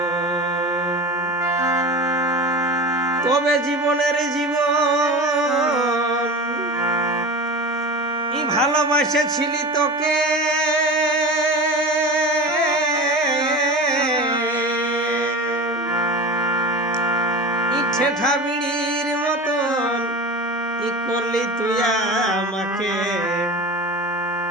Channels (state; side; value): normal; both; correlation 0.30